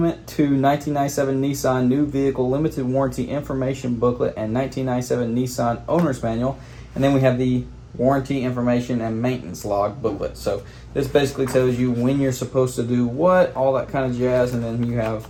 to 1997 Nissan New Vehicle Limited Warranty Information booklet and 1997 Nissan owner's manual. And then we have the warranty information and maintenance log booklet. So this basically tells you when you're supposed to do what, all that kind of jazz, and then you have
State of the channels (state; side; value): identical; both; correlation 1.00